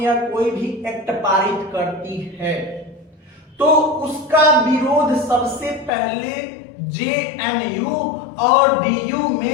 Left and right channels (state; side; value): drops out; right; at 5.9 s